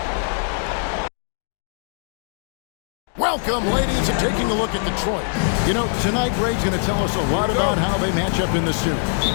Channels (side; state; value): right; silent; 62 dB below the other